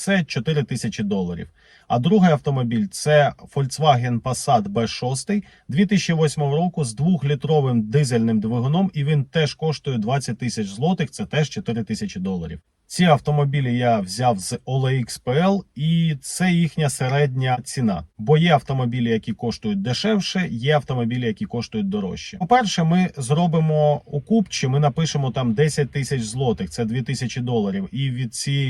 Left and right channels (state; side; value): identical; both; correlation 1.00